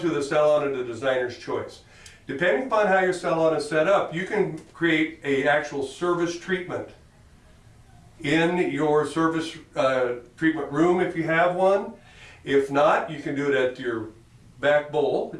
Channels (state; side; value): identical; both; correlation 1.00